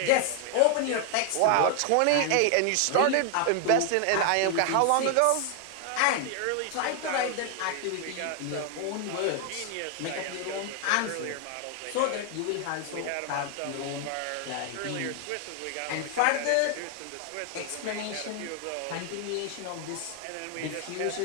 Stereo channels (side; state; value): both; different; correlation 0.00